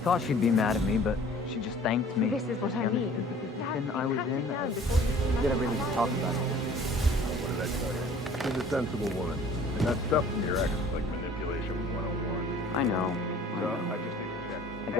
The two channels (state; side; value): normal; both; correlation 0.50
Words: she'd be mad at me, but she just thanked me. This is what She I mean. understood the position Dad, I was pat it in. down before you see We gotta Madame really just Carlyle. talk about it. What did I tell you? She's a sensible woman. And that stuff from your ex is like manipulation 101. I know. So, I just need to check. I